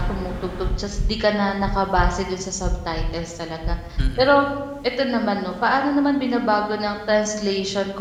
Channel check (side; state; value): both; identical; correlation 1.00